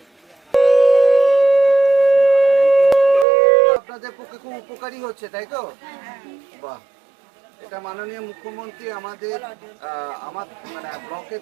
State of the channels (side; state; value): left; drops out; at 3.2 s